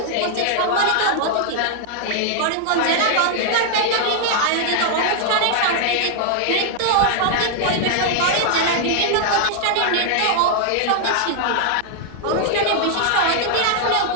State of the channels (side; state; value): both; different; correlation -0.01